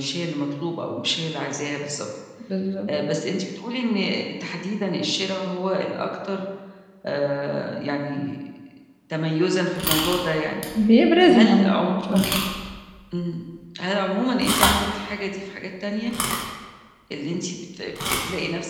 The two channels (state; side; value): identical; both; correlation 1.00